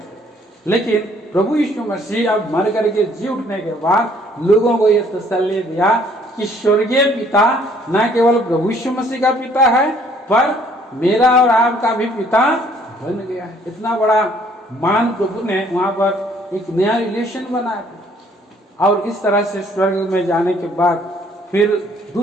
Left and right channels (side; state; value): both; normal; correlation 0.61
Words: लेकिन प्रभु यीशु मसीह अब मर करके जी उठने के बाद लोगों को यह तसल्ली दिया कि स्वर्गीय पिता न केवल प्रभु यीशु मसीह का पिता है, पर मेरा और आपका भी पिता बन गया है। इतना बड़ा मान प्रभु ने वहां पर एक नया रिलेशन बनाया। और इस तरह से स्वर्ग में जाने के बाद फिर